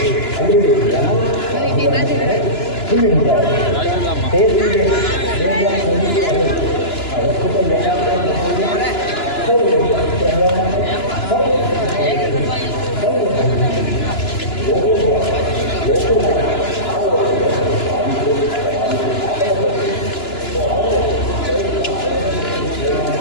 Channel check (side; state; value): right; late; 2.9 ms